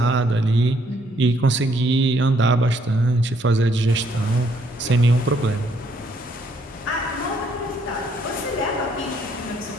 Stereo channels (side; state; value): both; normal; correlation 0.68